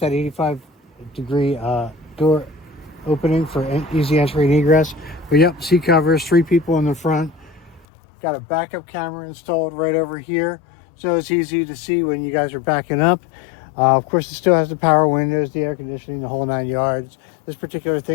85-degree door opening for easy entry and egress. But yep, seat covers, 3 people in the front. Got a backup camera installed right over here, so it's easy to see when you guys are backing up. Of course, it still has the power windows, the air conditioning, the whole 9 yards. This particular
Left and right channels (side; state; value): right; drops out; at 7.9 s